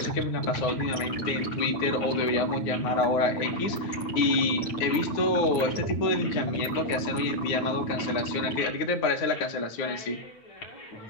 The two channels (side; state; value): right; late; 8.8 ms